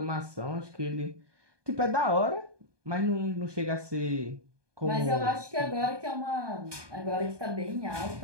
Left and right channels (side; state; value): left; late; 1.2 ms